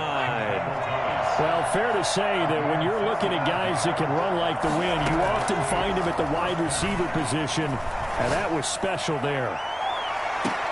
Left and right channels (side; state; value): both; identical; correlation 1.00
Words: Well, fair to say that when you're looking at guys that can run like the wind, you often find them at the wide receiver position, and that was special there.